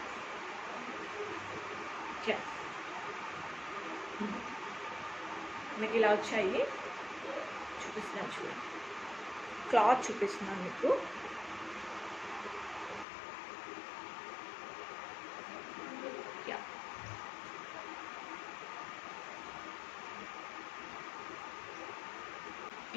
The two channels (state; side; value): drops out; right; at 13.1 s